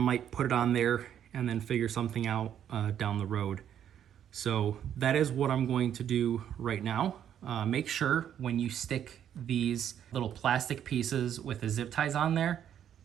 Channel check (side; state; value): left; quieter; 9.7 dB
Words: put it on there and then figure something out down the road. So that is what I'm going to do right now. Make sure when you stick these little plastic pieces with the zip ties on there